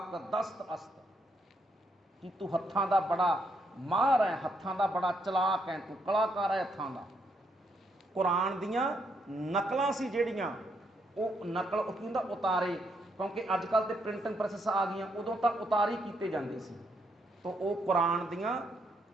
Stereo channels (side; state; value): both; normal; correlation 0.76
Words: ਦਸਤ ਅਸਤ, ਕਿ ਤੂੰ ਹੱਥਾਂ ਦਾ ਬੜਾ ਮਾਹਰ ਹੈ, ਹੱਥਾਂ ਦਾ ਬੜਾ ਚਲਾਕ ਹੈ, ਤੂੰ ਕਲਾਕਾਰ ਹੈ ਹੱਥਾਂ ਦਾ। ਕੁਰਾਨ ਦੀਆਂ ਨਕਲਾਂ ਸੀ ਜਿਹੜੀਆਂ, ਉਹ ਨਕਲ ਉਹ ਕੀ ਹੁੰਦਾ ਉਤਾਰੇ, ਕਿਉਂਕਿ ਅੱਜ ਕੱਲ੍ਹ ਤੇ ਪ੍ਰਿੰਟਿੰਗ ਪ੍ਰੈਸਸ ਆ ਗਈਆਂ, ਉਦੋਂ ਤਾਂ ਉਤਾਰੀ ਕੀਤੇ ਜਾਂਦੇ ਸੀ। ਤੋ ਉਹ ਕੁਰਾਨ ਦੀਆਂ